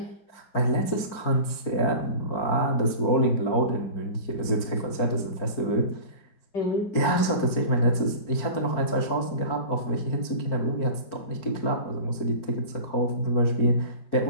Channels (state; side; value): late; right; 4.6 ms